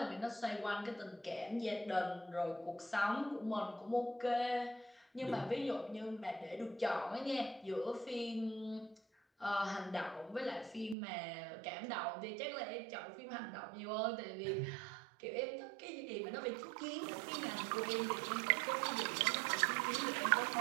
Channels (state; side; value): drops out; left; at 11.0 s